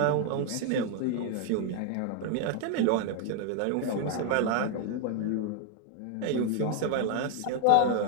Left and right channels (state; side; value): different; both; correlation 0.00